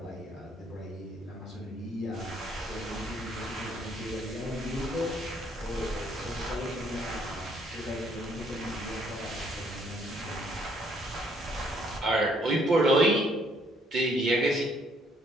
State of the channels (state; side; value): normal; both; correlation 0.67